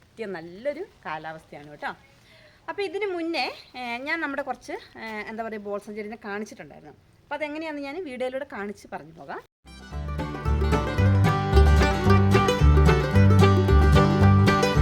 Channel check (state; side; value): identical; both; correlation 1.00